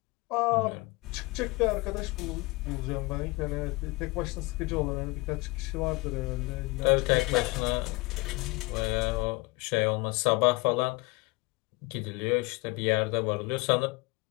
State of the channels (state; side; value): quieter; right; 24.5 dB